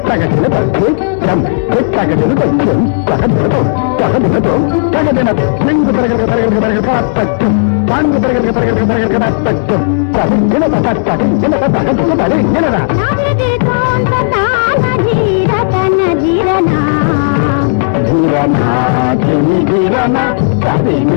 తదిత్తం దిత్తగదిన తదిత్తం తగదినతో తగదినతో తగదిన లింగు తరగతి తరగతి తరగతి తత్యం తాంగు తరగతి తరగతి తరగతి తత్యం తదిగిన తదిగిన తగదిన తదిగినరా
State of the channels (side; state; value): right; silent; digital silence